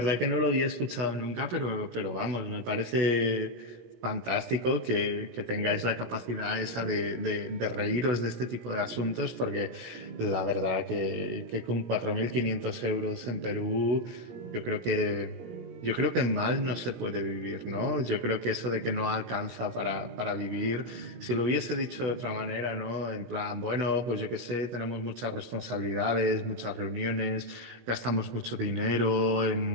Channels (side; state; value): left; late; 17 ms